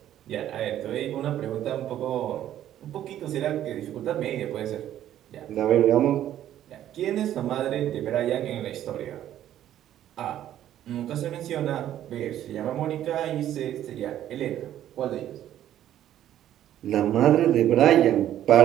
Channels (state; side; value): quieter; left; 11.8 dB